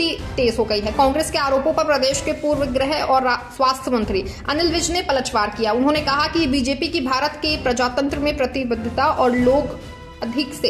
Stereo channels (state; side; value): identical; both; correlation 1.00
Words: तेज हो गई है। कांग्रेस के आरोपों पर प्रदेश के पूर्व गृह और स्वास्थ्य मंत्री अनिल विज ने पलटवार किया। उन्होंने कहा कि बीजेपी की भारत के प्रजातंत्र में प्रतिबद्धता और लोग अधिक